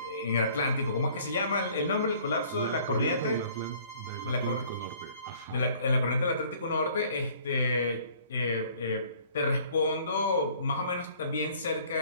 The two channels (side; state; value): both; inverted; correlation -0.55